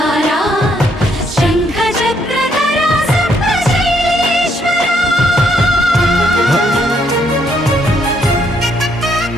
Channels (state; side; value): normal; both; correlation 0.71